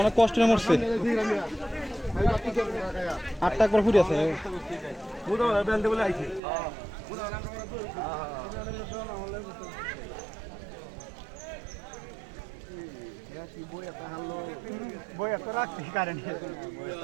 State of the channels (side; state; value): left; drops out; at 6.4 s